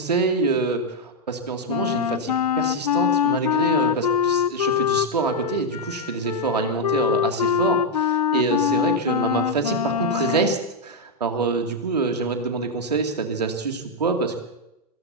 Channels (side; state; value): both; normal; correlation 0.00